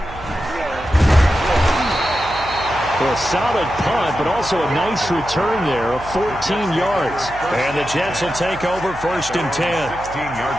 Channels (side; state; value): right; noise; hum, 15 dB below the sound